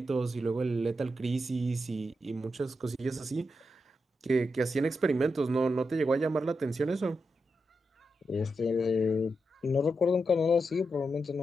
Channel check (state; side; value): normal; both; correlation 0.86